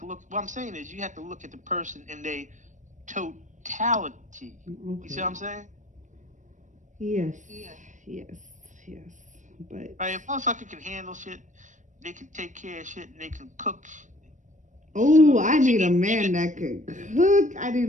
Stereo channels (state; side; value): late; left; 0.36 ms